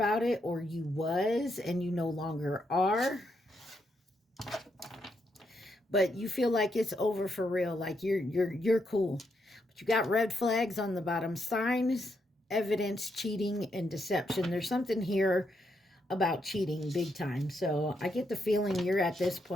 it, or you was and you no longer are. But you feel like it's over for real, like you're cool. But you got red flags on the bottom: signs, evidence, cheating, and deception. There's something here about cheating big time. So I get the feeling you're at this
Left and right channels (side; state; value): both; normal; correlation 0.79